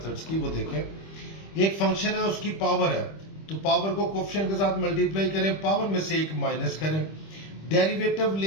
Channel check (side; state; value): right; late; 25 ms